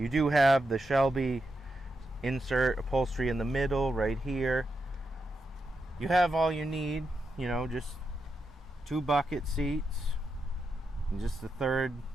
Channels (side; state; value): both; normal; correlation 0.85